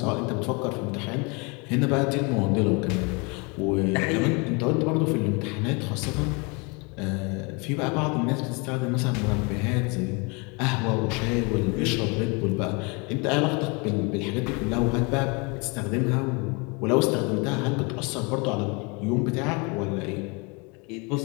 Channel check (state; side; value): quieter; right; 30.4 dB